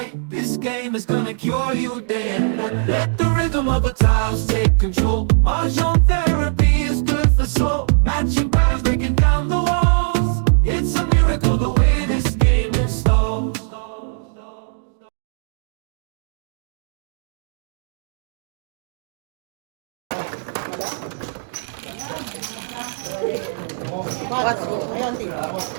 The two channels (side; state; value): left; silent; digital silence